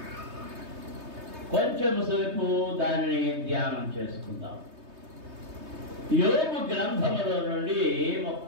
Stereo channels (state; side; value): late; left; 3.2 ms